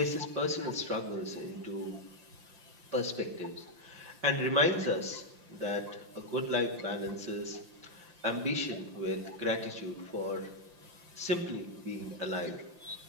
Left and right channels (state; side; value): late; left; 5.9 ms